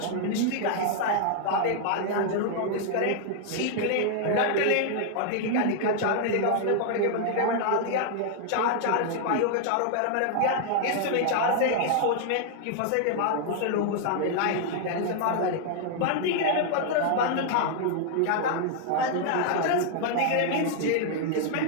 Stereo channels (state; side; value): different; both; correlation 0.00